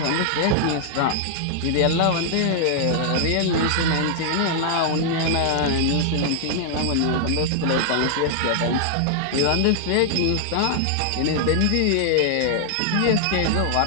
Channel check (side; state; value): both; different; correlation -0.01